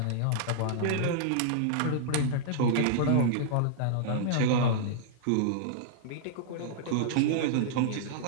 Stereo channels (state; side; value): different; both; correlation -0.02